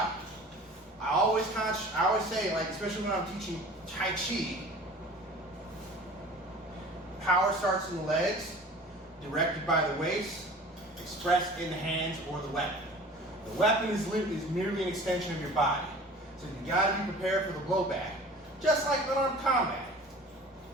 I always say, like, especially when I'm teaching Tai Chi, power starts in the legs, directed by the waist, expressed in the hands or the weapon. The weapon is merely an extension of your body. So you gotta be prepared for the blowback, just like unarmed combat.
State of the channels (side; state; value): both; normal; correlation 0.43